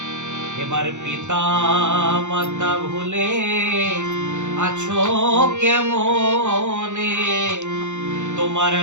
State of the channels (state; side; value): late; left; 0.84 ms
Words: এবার পিতা মাতা ভুলে আছো কেমনে? তোমার